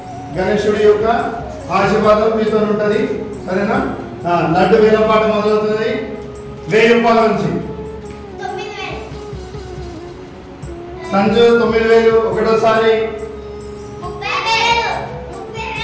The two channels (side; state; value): both; identical; correlation 1.00